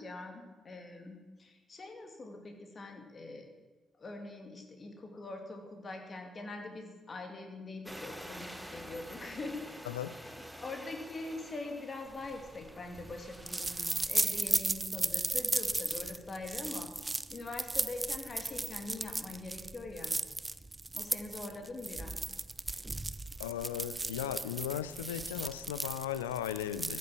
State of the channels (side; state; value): both; normal; correlation 0.75